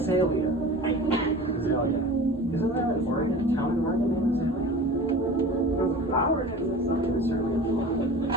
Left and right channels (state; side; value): normal; both; correlation 0.37